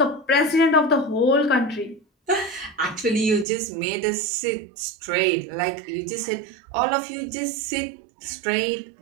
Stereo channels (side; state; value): left; drops out; at 3.5 s